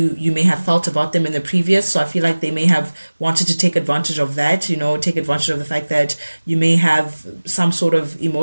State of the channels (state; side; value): inverted; both; correlation -1.00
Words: may have felt about them in the previous, so I feel like they may have wanted to take advantage of that, take advantage of the fact that you may have some sort of